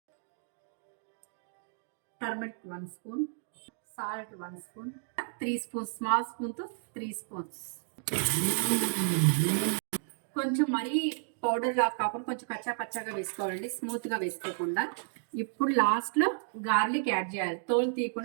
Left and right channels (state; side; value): silent; left; digital silence